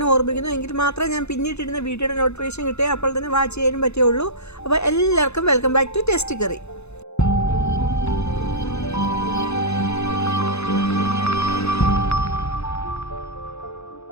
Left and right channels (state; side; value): late; right; 0.81 ms